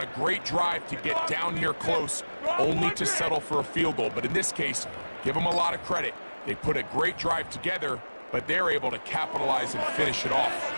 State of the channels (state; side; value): inverted; both; correlation -1.00